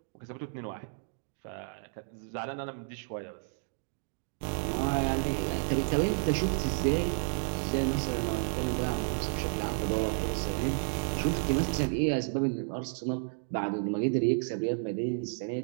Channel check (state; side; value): silent; left; digital silence